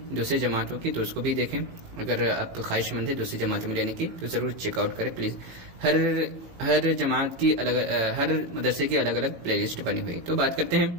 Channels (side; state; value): left; late; 18 ms